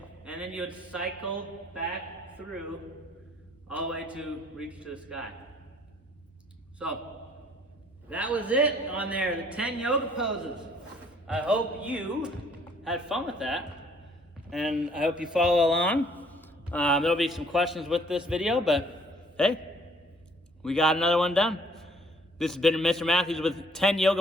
And then you would cycle back through all the way to reach to the sky. So, that was it on there, the 10 yoga poses. I hope you had fun with that, and I hope you follow along. There'll be some questions with this video, but hey, we got another one done. This has been Mr. Matthews with 10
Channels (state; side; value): normal; both; correlation 0.60